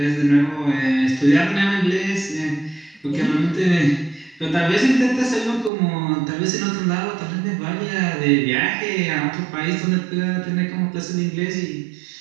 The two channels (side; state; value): left; drops out; at 5.7 s